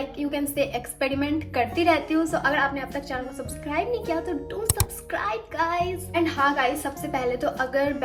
you can say experiment करती रहती हूँ। सो अगर आपने अब तक चैनल को सब्सक्राइब नहीं किया तो डू सब्सक्राइब गाइज। एंड हाँ गाइज, सबसे पहले तो अगर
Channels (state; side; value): identical; both; correlation 1.00